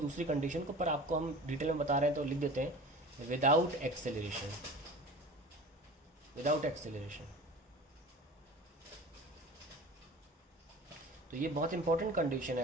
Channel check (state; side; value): normal; both; correlation 0.38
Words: कंडीशन को, पर आपको हम डिटेल में बता रहे हैं तो लिख देते हैं, विदाउट एक्सेलरेशन, विदाउट एक्सेलरेशन। तो ये बहुत इंपॉर्टेंट कंडीशन